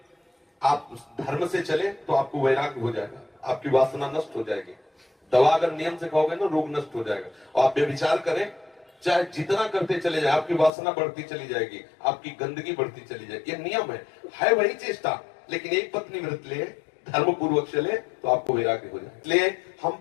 आप धर्म से चले तो आपको वैराग्य हो जाएगा, आपकी वासना नष्ट हो जाएगी। दवा अगर नियम से खाओगे ना, रोग नष्ट हो जाएगा। और आप व्यभिचार करें, चाहे जितना करते चले जाए, आपकी वासना बढ़ती चली जाएगी, आपकी गंदगी बढ़ती चली जाएगी। ये नियम है वही चेष्टा। लेकिन एक पत्नी व्रत ले, धर्म पूर्वक चले तो आपको वैराग्य हो जाए। इसलिए हम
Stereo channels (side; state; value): right; drops out; at 10.7 s